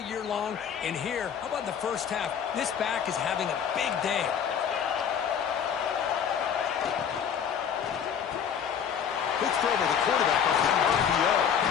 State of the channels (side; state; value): right; quieter; 7.9 dB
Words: long. And here, how about the first half? This back is having a big day. Quick throw to the quarterback off the RPO.